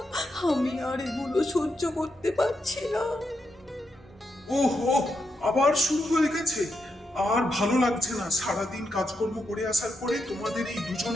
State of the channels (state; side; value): normal; both; correlation 0.83